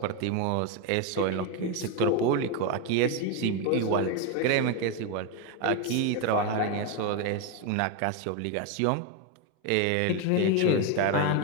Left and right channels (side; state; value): both; different; correlation 0.02